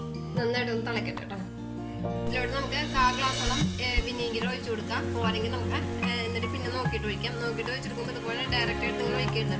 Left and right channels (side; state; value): both; identical; correlation 1.00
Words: നന്നായിട്ടൊന്ന് തിളക്കട്ടെ കേട്ടോ. ഇതിലോട്ട് നമുക്ക് 1/4 ഗ്ലാസോളം വിനീഗർ ഒഴിച്ചു കൊടുക്കാം. പോരെങ്കിൽ നമുക്ക് എന്നിട്ട് പിന്നെ നോക്കിയിട്ട് ഒഴിക്കാം. നോക്കിയിട്ട് ഒഴിച്ചെടുക്കുമ്പോൾ ഇതുപോലെ ഡയറക്റ്റ് ആയിട്ട് നിങ്ങൾ ഒഴിക്കരുത്